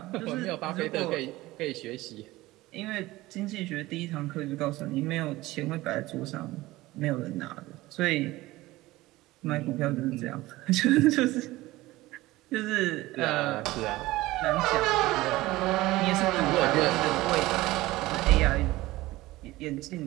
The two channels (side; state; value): left; quieter; 18.5 dB